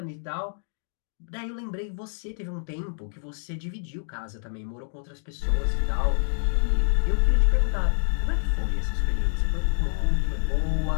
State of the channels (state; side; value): silent; right; digital silence